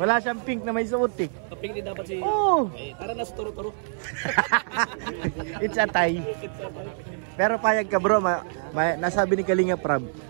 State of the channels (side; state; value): left; silent; 61 dB below the other